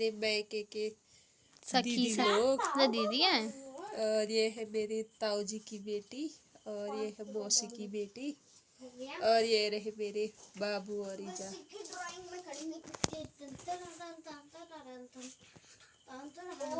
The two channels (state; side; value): identical; both; correlation 1.00